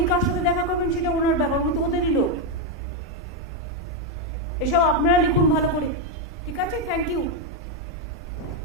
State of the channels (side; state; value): both; normal; correlation 0.03